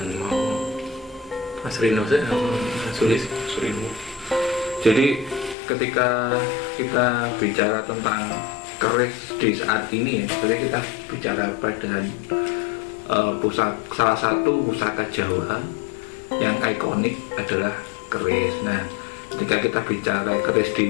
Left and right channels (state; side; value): drops out; right; at 5.6 s